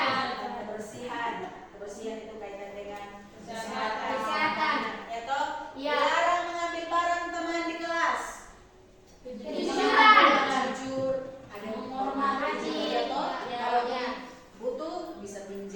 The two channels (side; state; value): both; identical; correlation 1.00